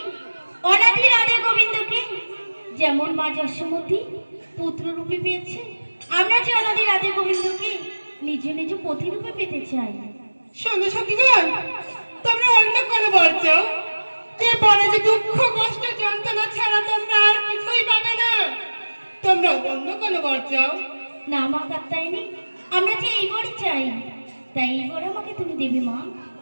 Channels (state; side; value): inverted; both; correlation -1.00